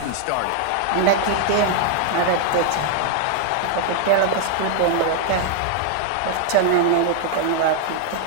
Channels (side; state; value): both; different; correlation 0.00